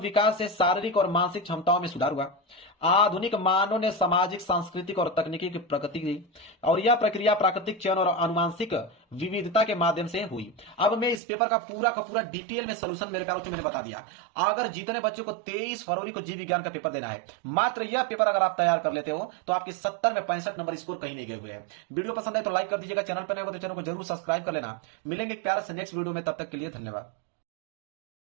से शारीरिक और मानसिक क्षमताओं में सुधार हुआ। आधुनिक मानव ने सामाजिक, सांस्कृतिक और तकनीकी की प्रगति की और यह प्रक्रिया प्राकृतिक चयन और आनुवंशिक विविधता के माध्यम से हुई। अब मैं इस पेपर का पूरा डिटेल में सलूशन मेरे पास मैंने बता दिया। अगर जितने बच्चों को 23 फरवरी को जीव विज्ञान का पेपर देना है, मात्र यह पेपर अगर आप तैयार कर लेते हो तो आपके 70 में 65 नंबर स्कोर कहीं नहीं गए हुए हैं। वीडियो पसंद है तो लाइक कर दीजिएगा, चैनल पर नए हो तो चैनल को जरूर सब्सक्राइब कर लेना। मिलेंगे प्यारे से नेक्स्ट वीडियो में, तब तक के लिए धन्यवाद।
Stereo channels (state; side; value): drops out; left; at 11.2 s